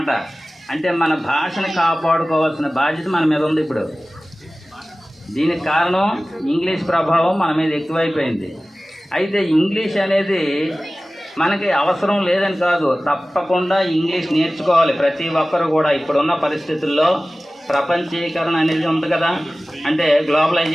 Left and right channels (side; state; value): both; normal; correlation 0.97